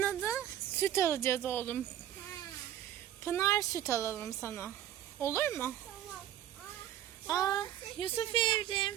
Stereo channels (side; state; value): left; quieter; 11.5 dB